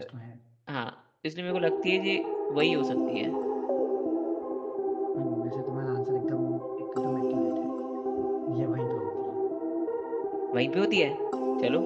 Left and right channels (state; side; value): identical; both; correlation 1.00